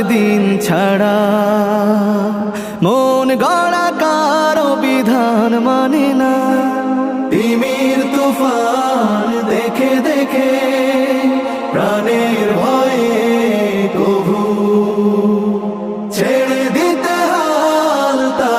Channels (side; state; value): both; identical; correlation 1.00